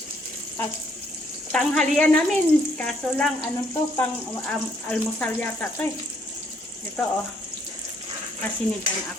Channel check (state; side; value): normal; both; correlation 0.68